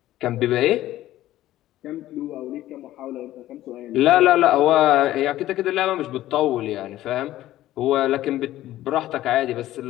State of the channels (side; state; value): right; quieter; 14.5 dB